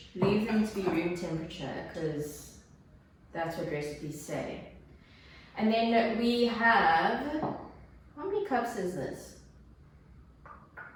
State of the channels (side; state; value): both; identical; correlation 1.00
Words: leave them to be room temperature, because that's what recipes say. And then we have, how many cups is this? I